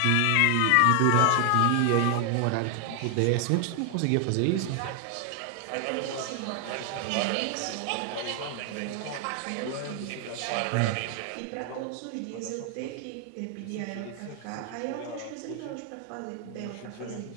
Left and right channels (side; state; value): both; different; correlation 0.00